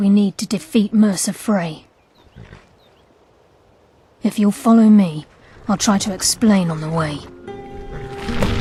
need to defeat Mercer Frey. If you'll follow me, I'll try to explain on the way.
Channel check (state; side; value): identical; both; correlation 1.00